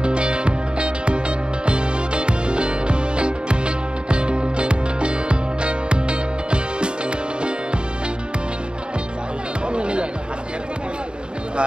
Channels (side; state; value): left; late; 0.051 ms